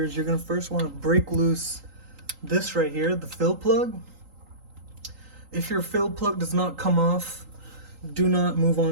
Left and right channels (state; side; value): late; left; 3.8 ms